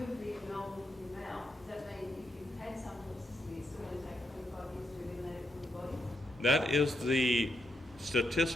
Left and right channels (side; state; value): both; normal; correlation 0.81